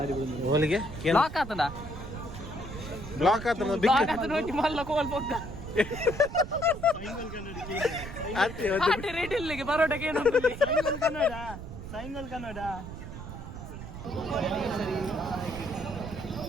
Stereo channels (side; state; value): right; noise; rumble, 10 dB below the sound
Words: ಓಲಿಗೆ ಬ್ಲಾಕ್ ಆತನ ಬ್ಲಾಕ್ ಆತ ನೋಡಿ ಮಲ್ಲ ಕೋಲ್ ಬೊಕ್ಕ ಆಟೆ ರೇಟ್ ಇಲ್ಲಿಗೆ ಪರೋಟಕ್ಕೆ ಏನು ಸೈಂಗಲ್ ಕನ್ನಡ